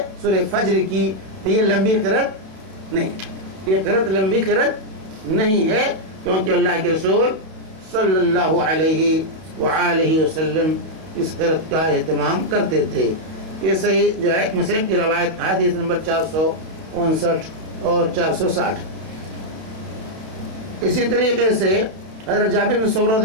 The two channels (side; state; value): left; late; 32 ms